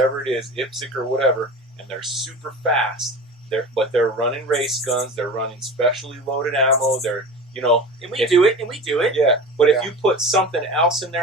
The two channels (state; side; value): normal; both; correlation 0.33